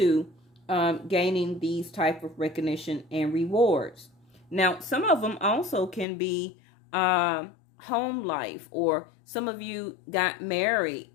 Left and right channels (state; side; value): drops out; right; at 6.1 s